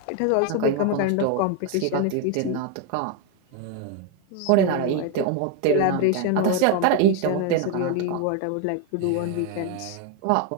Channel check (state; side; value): different; both; correlation 0.01